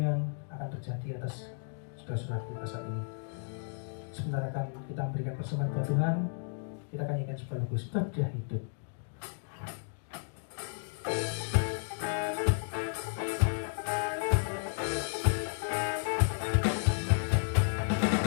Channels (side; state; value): right; silent; digital silence